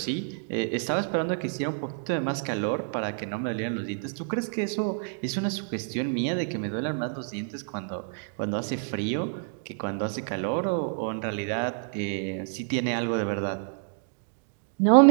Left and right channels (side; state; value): left; silent; digital silence